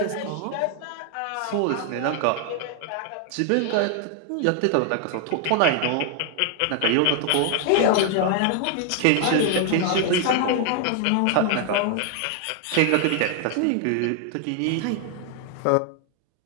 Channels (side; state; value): both; different; correlation 0.00